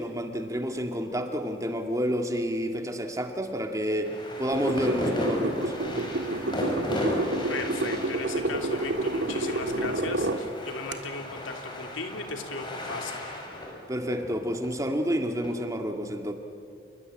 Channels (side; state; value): both; normal; correlation 0.48